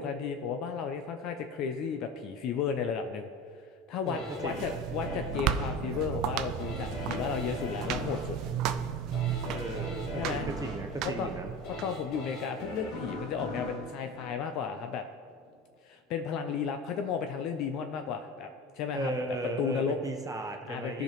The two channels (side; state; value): both; normal; correlation 0.32